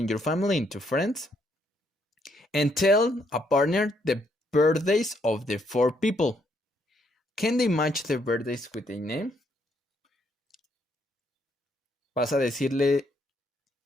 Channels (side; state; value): both; normal; correlation 0.72